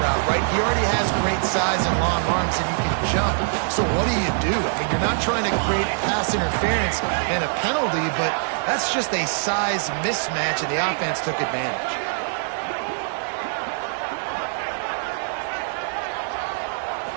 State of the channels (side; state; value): left; silent; 63 dB below the other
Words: right? He already has great size and long arms, and he can jump. So what do? I mean, you're not trying to create pass interference and a penalty, but that's just a size mismatch, and the offense took advantage.